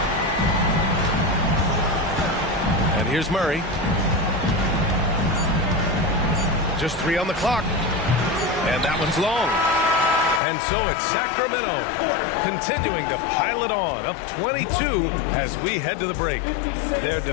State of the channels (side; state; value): right; drops out; at 10.4 s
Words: And here's Murray. Just 3 on the clock. And that one's long. And so it's Sacramento continuing to pile it on, up 22 as we head to the break. Their